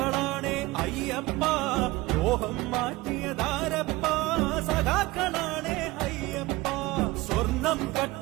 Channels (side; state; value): left; quieter; 20.2 dB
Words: അയ്യപ്പ ലോഹം മാറ്റിയതാരപ്പ സഖാക്കളാണേ അയ്യപ്പ സ്വർണം